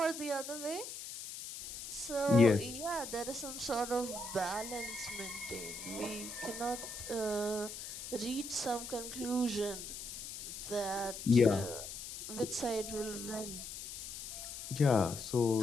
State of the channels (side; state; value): left; noise; hiss, 9 dB below the sound